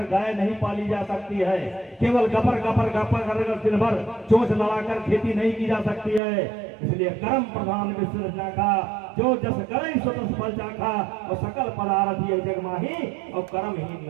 गाय नहीं पाली जा सकती है, केवल गपर गपर गपर कर दिन भर चोंच लड़ाकर खेती नहीं की जा सकती है। इसलिए कर्म प्रधान विश्व रचा का, जो जस करई सो तस फल चाखा, और सकल पदार्थ ये जग माही, और कर्महीन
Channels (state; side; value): drops out; left; at 6.2 s